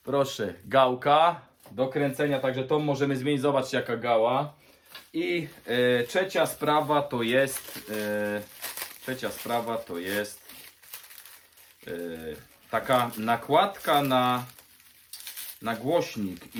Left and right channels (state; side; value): identical; both; correlation 1.00